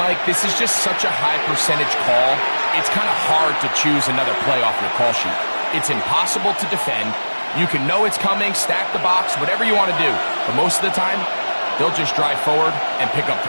this is just such a high percentage call. It's kind of hard to choose another play off your call sheet. It's impossible to defend. You can know it's coming, stack the box, whatever you want to do. But most of the time, they'll just drive forward and pick up the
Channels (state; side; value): inverted; both; correlation -1.00